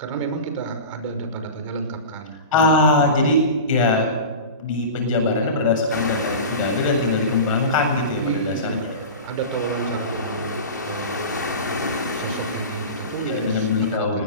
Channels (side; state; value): both; inverted; correlation -0.31